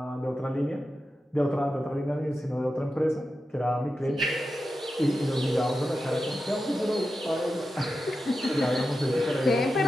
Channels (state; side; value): normal; both; correlation 0.91